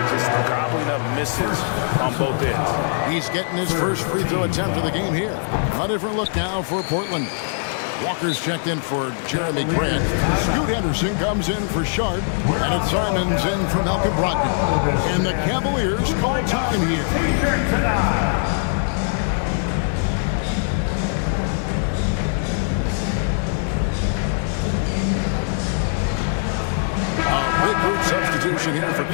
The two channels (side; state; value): right; silent; digital silence